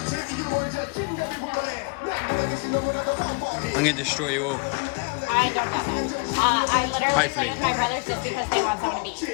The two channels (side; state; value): right; quieter; 33.0 dB